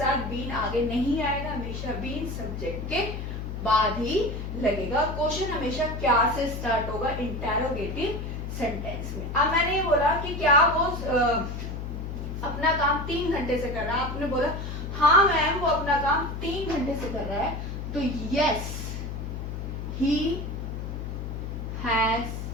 बीन आगे नहीं आएगा, हमेशा बीन सब्जेक्ट के बाद ही लगेगा। क्वेश्चन हमेशा क्या से स्टार्ट होगा इंटरोगेटिव सेंटेंस में। अब मैंने ये बोला कि क्या वो अपना काम 3 घंटे से कर रहा है, आपने बोला हाँ मैम वो अपना काम 3 घंटे से कर रहा है, तो यस ही हैज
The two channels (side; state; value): left; noise; hum, 6 dB below the sound